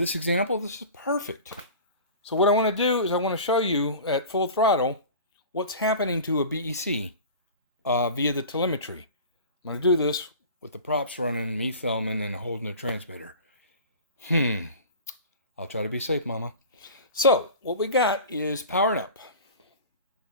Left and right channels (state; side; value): inverted; both; correlation -0.38